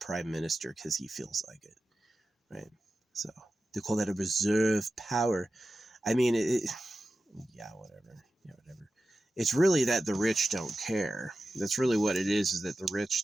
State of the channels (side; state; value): both; normal; correlation 0.93